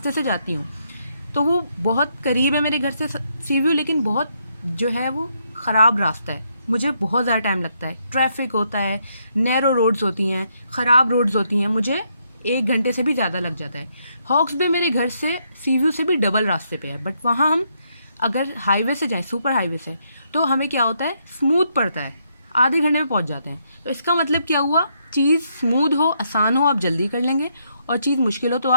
से जाती हूँ तो वो बहुत करीब है मेरे घर से सीव्यू, लेकिन बहुत जो है वो ख़राब रास्ता है, मुझे बहुत ज़्यादा टाइम लगता है, ट्रैफिक होता है, नैरो रोड्स होती हैं, ख़राब रोड्स होती हैं, मुझे 1 घंटे से भी ज़्यादा लग जाता है। हॉक्स बे मेरे घर से सीव्यू से भी डबल रास्ते पे है, बट वहाँ हम अगर हाईवे से जाएं, सुपर हाईवे से, तो हमें क्या होता है, स्मूथ पड़ता है, आधे घंटे में पहुँच जाते हैं। तो इसका मतलब क्या हुआ, चीज़ स्मूथ हो, आसान हो, आप जल्दी कर लेंगे, और चीज़ मुश्किल हो तो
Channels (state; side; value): inverted; both; correlation -0.76